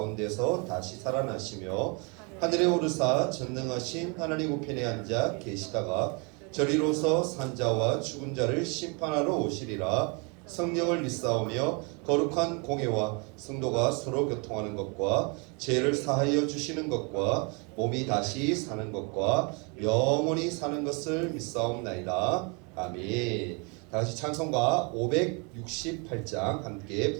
다시 살아나시며 하늘에 오르사 전능하신 하나님 우편에 앉아 계시다가 저리로서 산자와 죽은 자를 심판하러 오시리라. 성령을 믿사오며 거룩한 공회와 성도가 서로 교통하는 것과 죄를 사하여 주시는 것과 몸이 다시 사는 것과 영원히 사는 것을 믿사옵나이다. 아멘. 다같이 찬송가 568장 함께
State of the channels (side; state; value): left; quieter; 32.7 dB